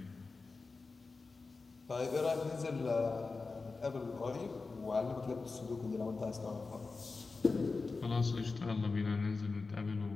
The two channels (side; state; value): right; quieter; 4.1 dB